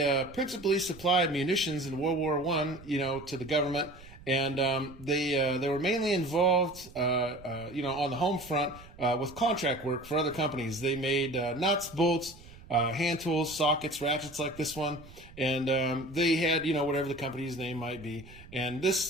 principally supplied munitions in World War I, to the government. And they were mainly involved, on the home front with contract work for other companies. They made nuts, bolts, hand tools, sockets, ratchets like this one, and they had, whatever the company's name might be. And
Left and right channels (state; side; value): noise; right; rumble, 20 dB below the sound